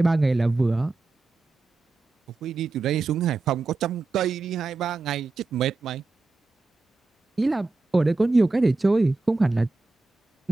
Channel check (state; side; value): quieter; left; 3.4 dB